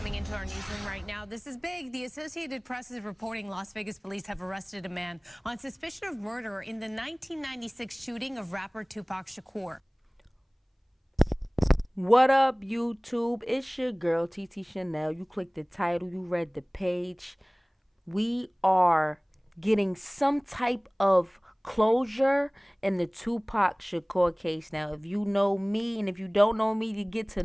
into our newsroom right now. This is big. The Associated Press is reporting Las Vegas police have arrested a man on suspicion of murder in the 1996 shooting of rapper Tupac Shakur. What up, YouTube? It's your girl, TT Shanell. You clicked the title, you read the page. We are getting some type of closure in the Tupac Shakur case. Now, if you know me, and if you don't know me, you get to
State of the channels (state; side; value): identical; both; correlation 1.00